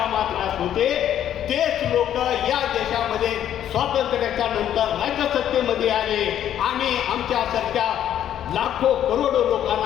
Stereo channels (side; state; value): right; quieter; 10.7 dB